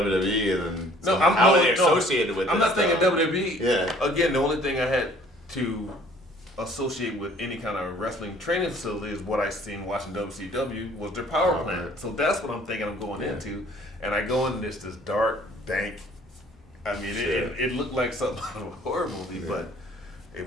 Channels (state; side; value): normal; both; correlation 0.55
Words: and then no, how are they associated with I'm this not thinking stuff? WWE. Yeah. Again, the only thing I had to associate with any kind of wrestling training facility is what I seen watching WCW was their power plant. Plant. So that's what I'm thinking I'm going into. And I go in this dark, dank. I mean, it looked like something out of a horror movie, but it